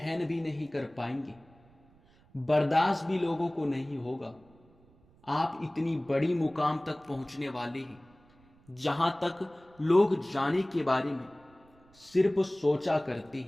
भी नहीं कर पाएंगे, बर्दाश्त भी लोगों को नहीं होगा। आप इतनी बड़ी मुकाम तक पहुंचने वाले हैं जहां तक लोग जाने के बारे में सिर्फ सोचा करते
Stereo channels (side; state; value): right; noise; rumble, 29 dB below the sound